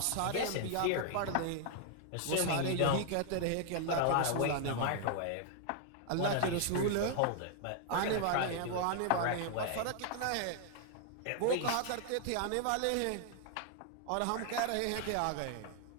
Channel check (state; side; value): different; both; correlation 0.00